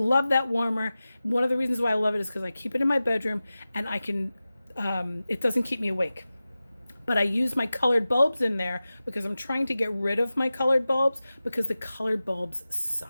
that warmer. One of the reasons why I love it is because I keep it in my bedroom and I can, it doesn't keep me awake. But I use my colored bulbs in there because I'm trying to get rid of my colored bulbs because the colored bulbs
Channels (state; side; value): inverted; both; correlation -0.96